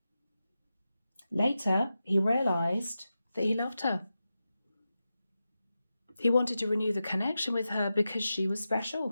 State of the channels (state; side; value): inverted; both; correlation -0.91